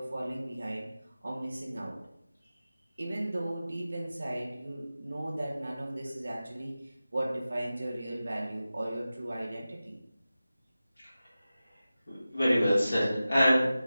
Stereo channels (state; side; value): inverted; both; correlation -0.95